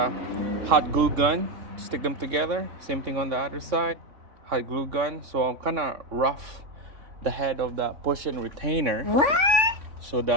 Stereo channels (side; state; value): left; late; 3.5 ms